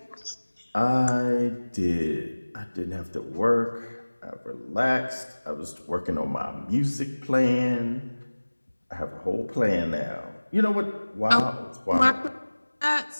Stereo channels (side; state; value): both; inverted; correlation -1.00